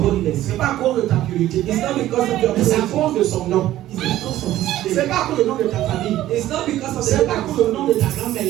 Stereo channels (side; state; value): left; quieter; 14.0 dB